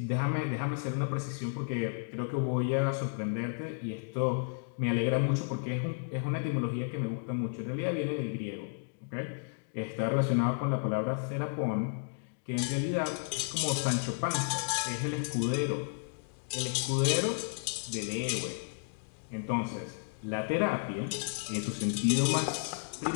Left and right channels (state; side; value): silent; right; digital silence